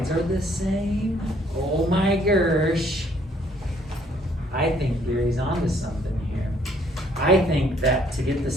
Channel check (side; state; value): both; normal; correlation 0.64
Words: are the same? Oh my gosh. I think Gary's onto something here. I think that to get the